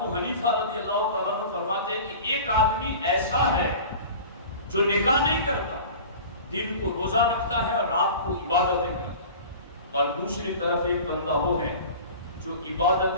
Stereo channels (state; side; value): inverted; both; correlation -0.38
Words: حنیفہ رضی اللہ تعالیٰ عنہ فرماتے ہیں کہ ایک آدمی ایسا ہے جو نکاح نہیں کرتا، دن کو روزہ رکھتا ہے اور رات کو عبادتیں کرتا ہے، اور دوسری طرف ایک بندہ وہ ہے جو